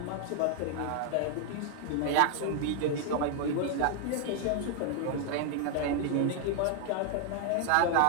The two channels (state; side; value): different; both; correlation 0.00